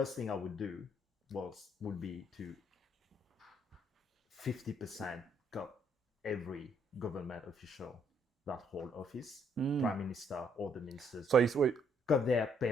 thing I would do would be to 50% got every government official that hold office, prime minister or the ministers. So wait, got their pay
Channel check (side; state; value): both; normal; correlation 0.69